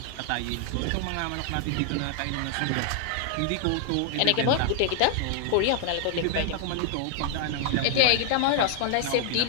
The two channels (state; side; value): different; both; correlation -0.01